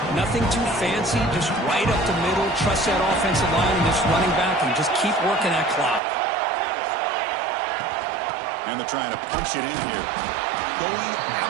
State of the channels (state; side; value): drops out; left; at 6.0 s